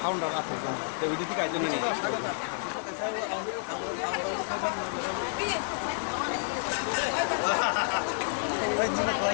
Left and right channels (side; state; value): right; silent; digital silence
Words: ফাউন্ডার আছে তো ওইটা থেকে আইজন্য নেই